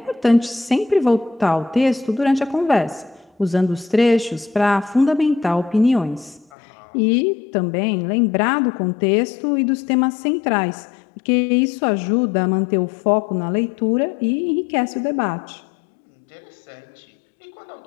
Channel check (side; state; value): right; drops out; at 6.5 s